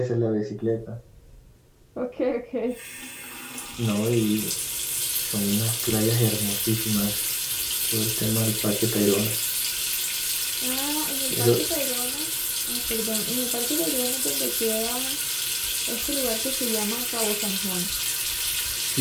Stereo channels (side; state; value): both; identical; correlation 1.00